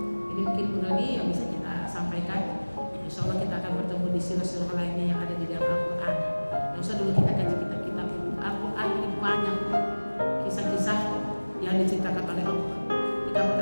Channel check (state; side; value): inverted; both; correlation -1.00